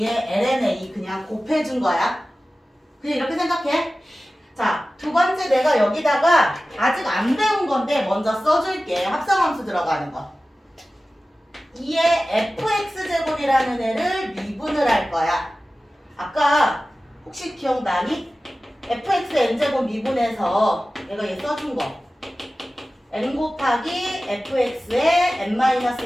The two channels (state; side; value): normal; both; correlation 0.96